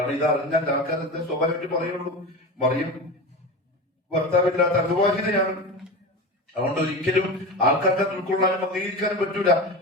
ഇത് അറിഞ്ഞാൽ ആൾക്കാരെന്താ സ്വാഭാവികമായിട്ട് പറയുള്ളൂ, മറിയം ഭർത്താവില്ലാത്ത അവിവാഹിതയാണ്. അതുകൊണ്ട് ഒരിക്കലും ആൾക്കാർക്ക് ഉൾക്കൊള്ളാനും അംഗീകരിക്കാനും പറ്റൂല.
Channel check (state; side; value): normal; both; correlation 0.26